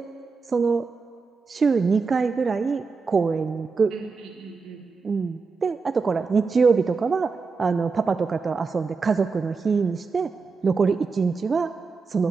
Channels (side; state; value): left; quieter; 4.7 dB